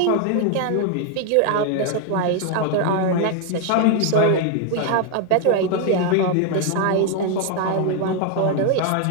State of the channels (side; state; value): both; different; correlation 0.01